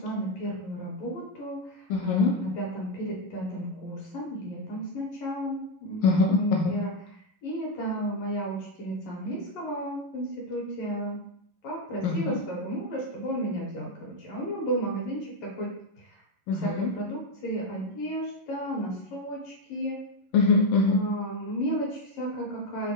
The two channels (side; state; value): right; late; 11 ms